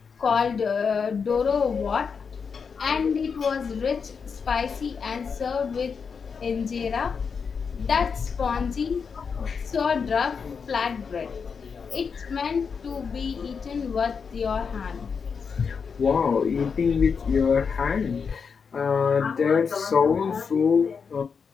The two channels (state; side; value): quieter; right; 5.9 dB